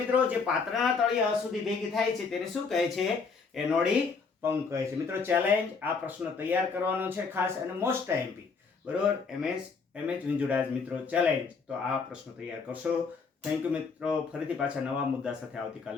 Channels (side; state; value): right; quieter; 5.0 dB